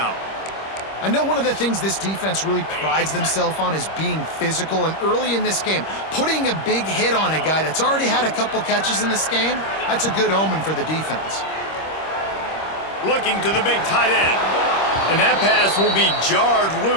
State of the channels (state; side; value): late; right; 26 ms